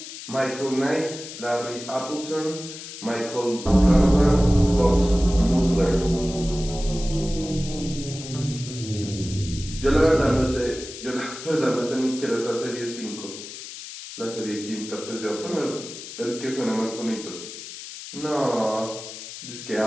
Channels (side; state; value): left; noise; hiss, 12 dB below the sound